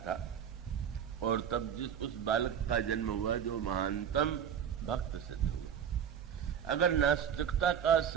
और तब जिस उस बालक का जन्म हुआ जो महानतम भक्त सिद्ध हुआ। अगर नास्तिकता का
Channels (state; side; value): quieter; left; 8.5 dB